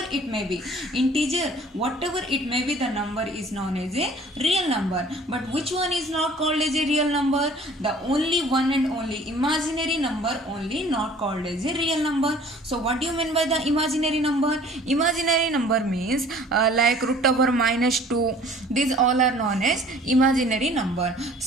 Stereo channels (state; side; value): normal; both; correlation 0.51